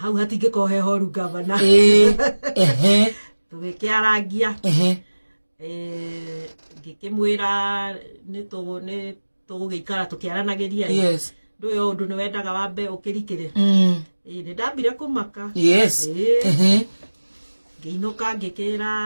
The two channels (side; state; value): both; inverted; correlation -1.00